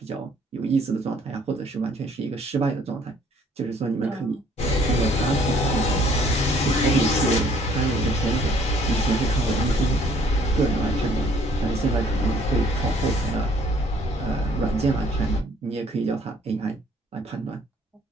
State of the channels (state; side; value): normal; both; correlation 0.60